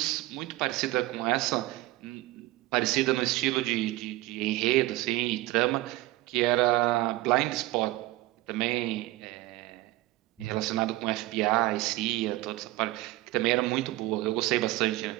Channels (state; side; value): quieter; left; 18.4 dB